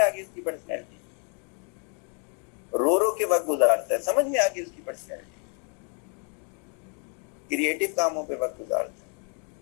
गई उसकी पर्सनैलिटी। रो रो के वक्त गुजारता है, समझ में आ गई उसकी पर्सनैलिटी। क्रिएटिव कामों पे वक्त गुजारता है,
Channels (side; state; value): right; quieter; 38.8 dB